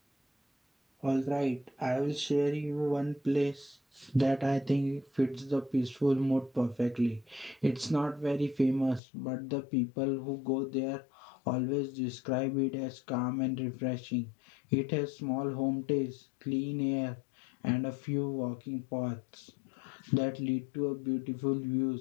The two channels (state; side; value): drops out; right; at 9.0 s